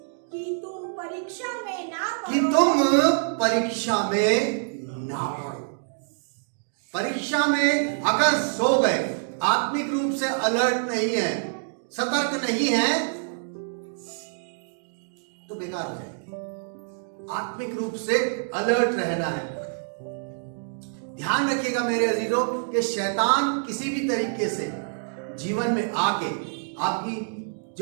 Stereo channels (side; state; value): left; silent; digital silence